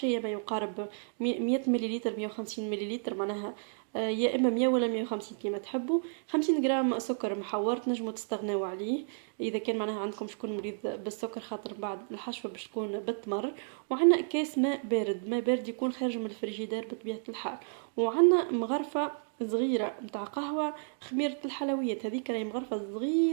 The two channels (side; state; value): left; silent; digital silence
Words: ما يقارب 100 مليلتر، 150 مليلتر معناها. يا اما 100 ولا 150 كيما تحبوا. 50 غرام سكر محور تنجموا تستغناو عليه اذا كان معناها عندكم شكون مريض بالسكر، خاطر بعد الحشوه باش تكون بالتمر. وعندنا كاس ماء بارد، ماء بارد يكون خارج من الفريجيدير بطبيعه الحال. وعندنا مغرفه صغيره متاع قهوه، خميرة الحلويات هذيك راهي مغرفة